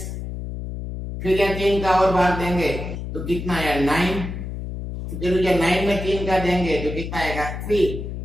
फिर यह 3 का और भाग देंगे तो कितना आया 9, फिर 9 में 3 का देंगे तो कितना आएगा 3,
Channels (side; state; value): left; noise; hum, 7 dB below the sound